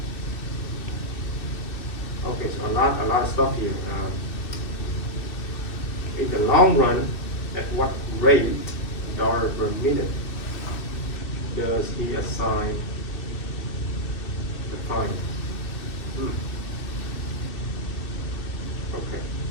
okay, so a lot of stuff here. In the long run, at what rate, dollar per minute, does he assign the time?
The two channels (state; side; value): late; right; 2.6 ms